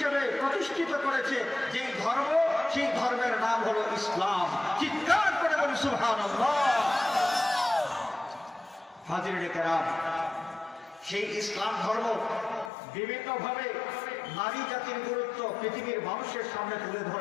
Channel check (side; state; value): right; drops out; at 12.7 s